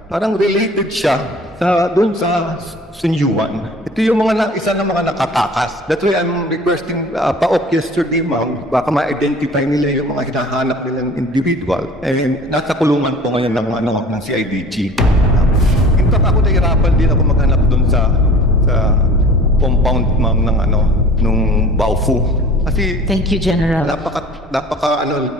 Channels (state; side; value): normal; both; correlation 0.45